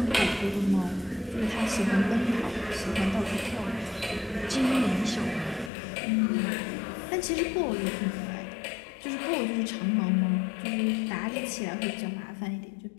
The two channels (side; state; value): right; drops out; at 5.7 s